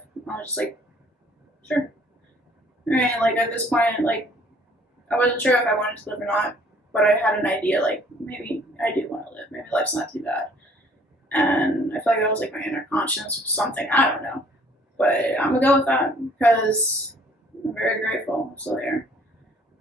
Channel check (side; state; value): both; normal; correlation 0.57